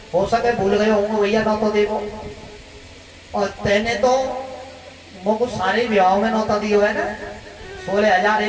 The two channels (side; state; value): both; identical; correlation 1.00